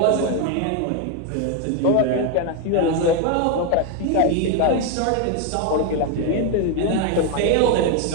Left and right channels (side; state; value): both; different; correlation 0.01